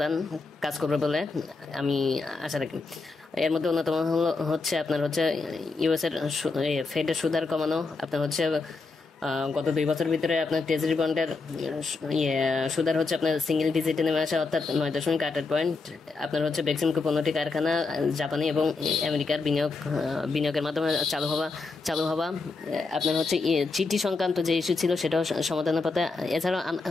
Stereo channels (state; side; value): quieter; right; 4.0 dB